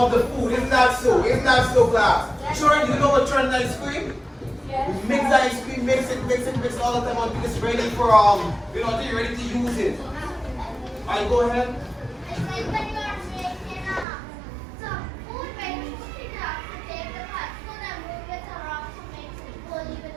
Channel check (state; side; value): drops out; left; at 14.1 s